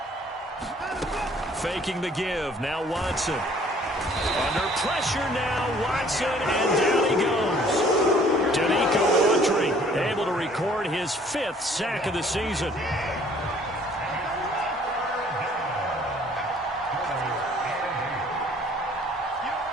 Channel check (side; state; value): both; normal; correlation 0.57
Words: Faking the give. Now Watson. Under pressure now. Watson, and down he goes. Danico Autry able to record his 5th sack of the season.